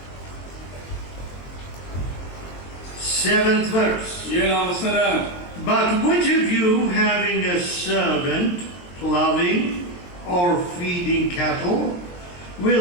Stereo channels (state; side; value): late; right; 23 ms